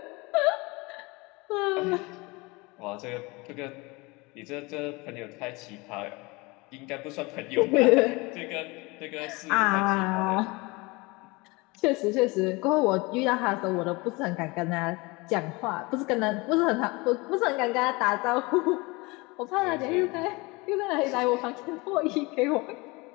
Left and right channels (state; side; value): quieter; right; 25.1 dB